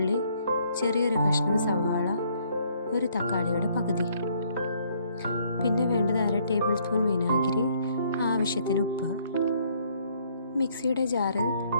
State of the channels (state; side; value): inverted; both; correlation -0.66